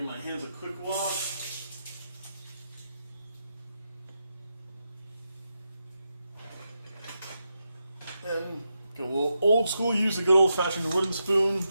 my hands a quick wash. And go a little old school. Use a good old fashioned wooden spoon.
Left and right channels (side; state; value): both; inverted; correlation -0.86